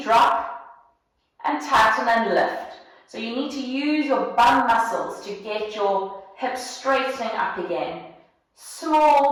drop and tighten and lift. So you need to use your bum muscles to get your hips straightening up again.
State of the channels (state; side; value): identical; both; correlation 1.00